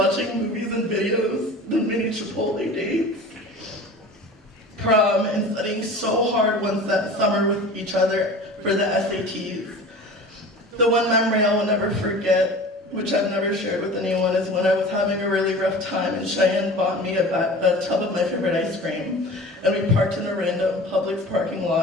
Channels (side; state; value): both; normal; correlation 0.38